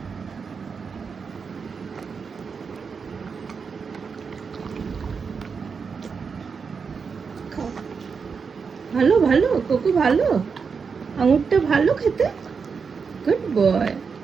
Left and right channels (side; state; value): left; quieter; 5.6 dB